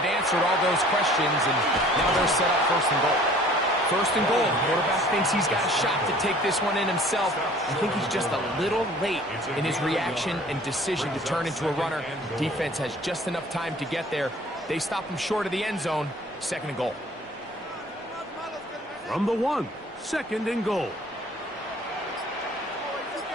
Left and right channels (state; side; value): normal; both; correlation 0.51